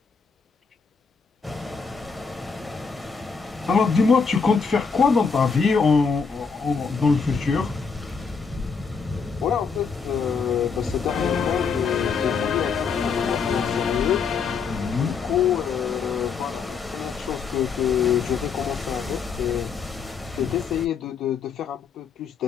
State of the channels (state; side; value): quieter; right; 5.6 dB